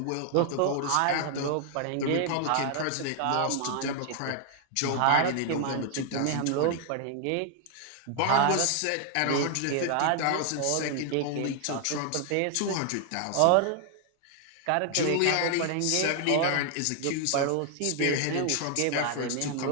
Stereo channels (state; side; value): different; both; correlation 0.00